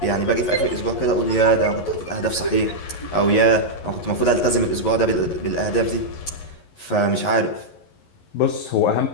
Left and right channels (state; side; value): late; right; 11 ms